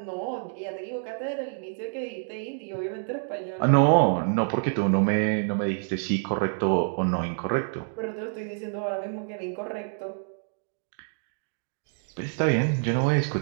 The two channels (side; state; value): left; silent; digital silence